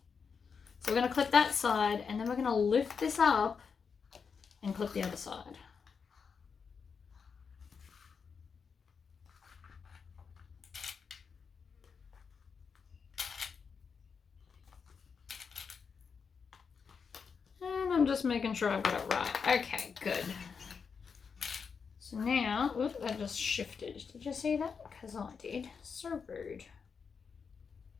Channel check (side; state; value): right; quieter; 5.9 dB